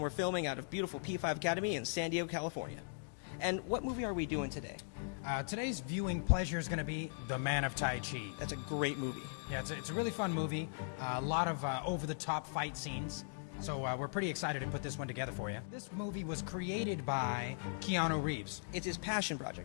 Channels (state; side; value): silent; right; digital silence